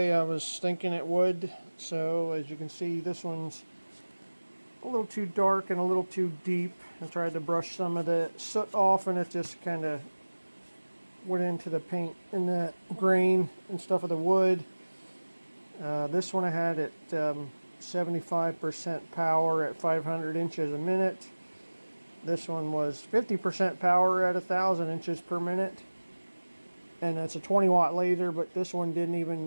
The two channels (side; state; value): both; inverted; correlation -1.00